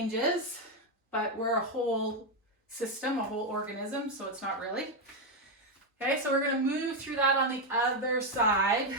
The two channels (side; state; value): both; normal; correlation 0.04